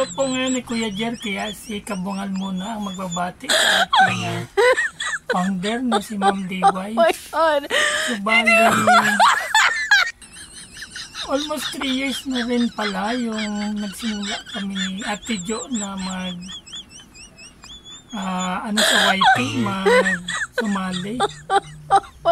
po ngayon ni Kuya Jer, kaya si Kabungal muna ang magbabati sa ating founder na si Ma'am Diway. Oh my God! So, bali, almost 3 years na rin pala yung nagsimula kami ni Ate Jo na sa YT, sumali. Oh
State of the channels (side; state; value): both; identical; correlation 1.00